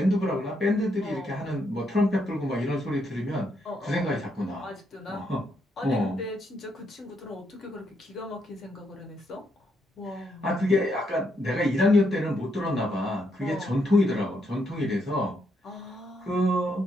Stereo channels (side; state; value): both; normal; correlation 0.77